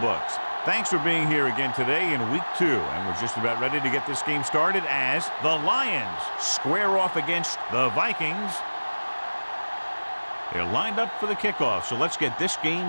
Thanks for being here again today in week 2. And we're just about ready to get this game started as the Lions square off against the Vikings. They're lined up for the kickoff, so let's get this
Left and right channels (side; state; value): both; inverted; correlation -1.00